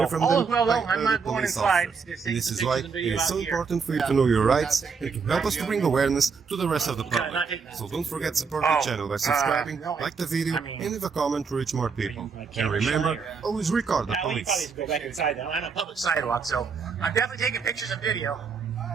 from all them is well, by though. I'm other not going police inside. officers. Just And take this some is why pictures it and is video so out here. important for you to know your rights and to help us to bring awareness to the rest of the public. So don't forget to support the channel by subscribing, like the video, and leave a comment to reach more people. And remember, always record the Now, we probably police. need to go back inside now. I'm on a public sidewalk, so I'm definitely taking pictures and video.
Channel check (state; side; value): quieter; left; 5.5 dB